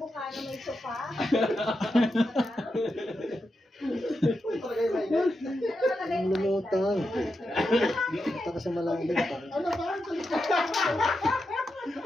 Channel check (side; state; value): both; normal; correlation 0.87